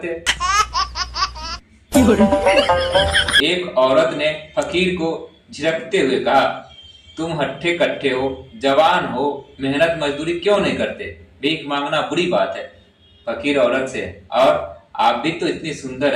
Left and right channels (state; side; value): identical; both; correlation 1.00